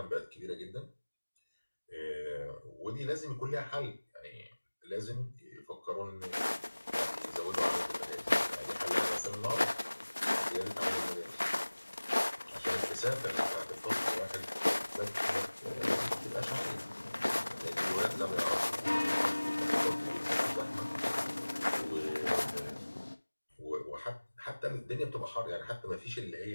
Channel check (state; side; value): inverted; both; correlation -1.00